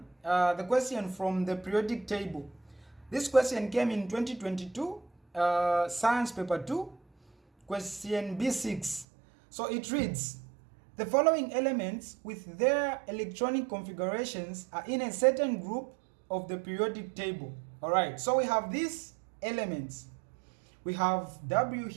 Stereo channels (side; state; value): left; drops out; at 9.1 s